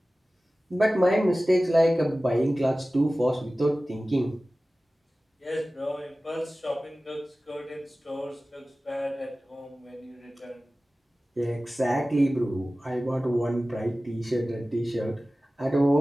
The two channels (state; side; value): normal; both; correlation 0.97